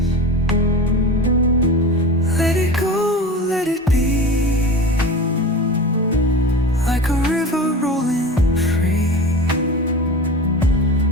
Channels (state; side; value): normal; both; correlation 0.32